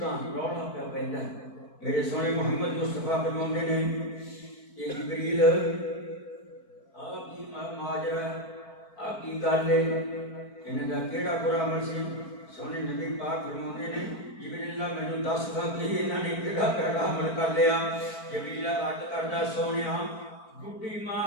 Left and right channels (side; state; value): right; late; 4.5 ms